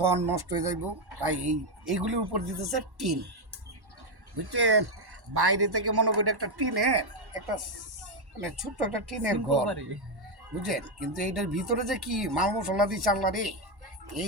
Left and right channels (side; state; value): left; late; 1.1 ms